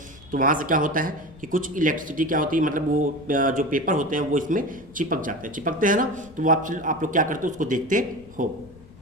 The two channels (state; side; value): noise; left; rumble, 23 dB below the sound